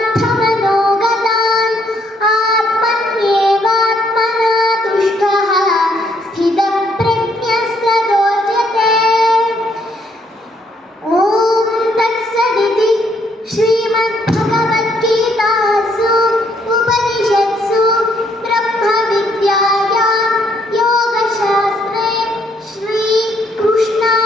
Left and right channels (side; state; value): both; normal; correlation 0.70